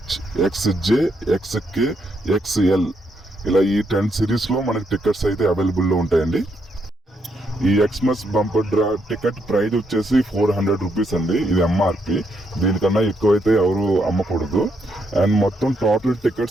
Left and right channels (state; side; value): normal; both; correlation 0.77